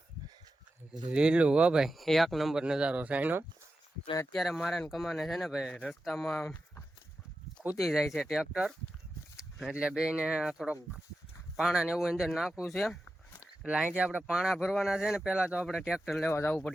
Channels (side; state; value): both; normal; correlation 0.91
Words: લીલું હો ભાઈ, એક નંબર નજારો છે એનો. અને અત્યારે મારે કમાને છે ને ભાઈ, રસ્તામાં ખૂતી જાય છે ટ્રેક્ટર, એટલે બેને થોડોક પાણા ને એવું અંદર નાખવું છે. એટલે અહીંથી આપણે પાણા ભરવાના છે ને, પહેલાં તો આપણે ટ્રેક્ટર લેવા જવું